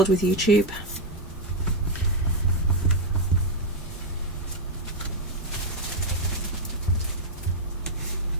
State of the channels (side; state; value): both; normal; correlation 0.01